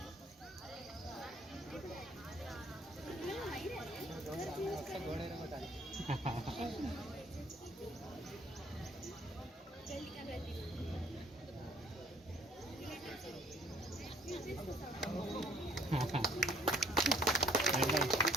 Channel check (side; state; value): both; normal; correlation 0.58